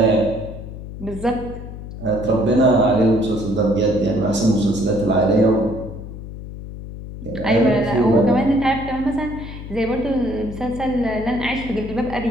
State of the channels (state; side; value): noise; left; hum, 11 dB below the sound